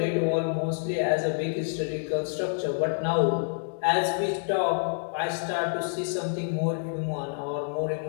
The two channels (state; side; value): silent; right; digital silence